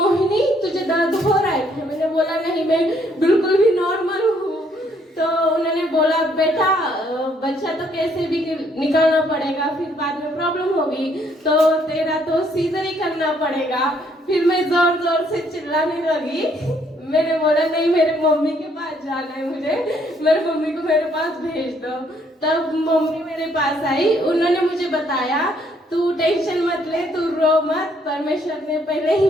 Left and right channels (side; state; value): both; normal; correlation 0.68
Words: तुझे दर्द हो रहा है? मैंने बोला नहीं, मैं बिल्कुल भी नॉर्मल हूँ। तो उन्होंने बोला बेटा बच्चा तो कैसे भी निकालना पड़ेगा, फिर बाद में प्रॉब्लम होगी, तो तेरा तो सीजर ही करना पड़ेगा। फिर मैं जोर जोर से चिल्लाने लगी। मैंने बोला नहीं, मेरे मम्मी के पास जाना है, मुझे मेरे मम्मी को मेरे पास भेज दो। तब मम्मी मेरे पास आई, उन्होंने मुझे बताया तू टेंशन मत ले, तू रो मत, परमेश्वर ने पहले ही